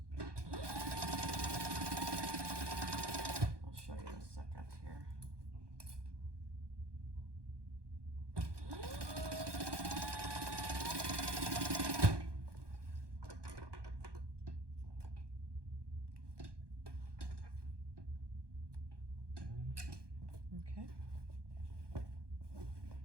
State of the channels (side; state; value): left; late; 1.2 ms